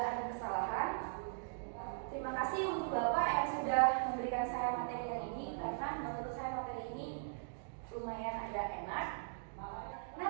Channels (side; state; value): left; silent; digital silence